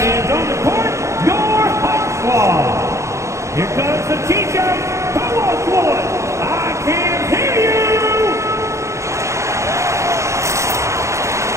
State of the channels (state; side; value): late; left; 0.14 ms